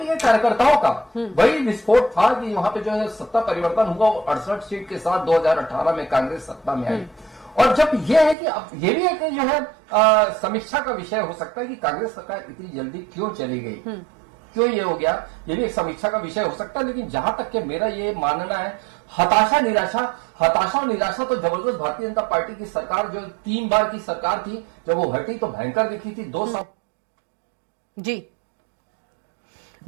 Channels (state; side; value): drops out; left; at 8.3 s